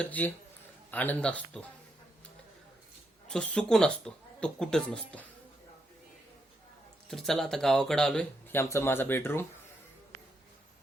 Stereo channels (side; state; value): both; normal; correlation 0.80